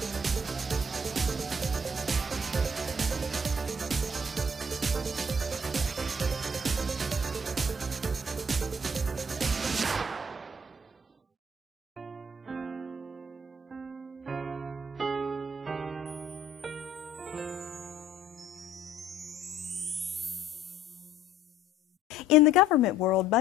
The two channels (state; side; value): normal; both; correlation 0.59